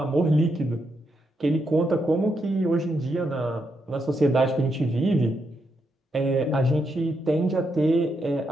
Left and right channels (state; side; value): normal; both; correlation 0.81